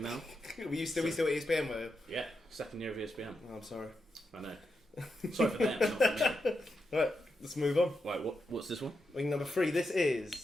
now. Were you still at ESPN, were you? Yeah, second year of ESPN. Oh, I'm sorry. I know. Sorry for them, not for me. Right, let's move on. Right, what's this one? Wing number 3. This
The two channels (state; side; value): normal; both; correlation 0.86